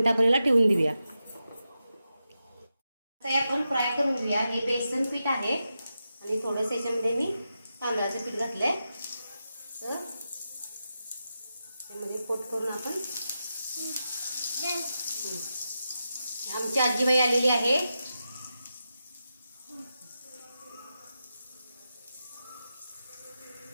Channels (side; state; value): both; inverted; correlation -0.89